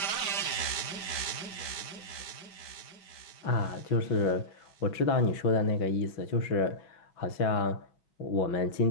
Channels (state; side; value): late; right; 5.2 ms